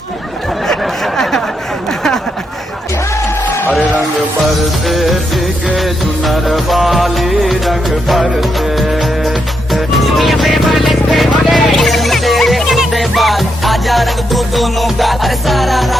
हरे रंग बरसे भीगे चुनर वाली रंग बरसे आजा रंग दो दोनों का अरे सारा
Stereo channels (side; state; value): both; normal; correlation 0.81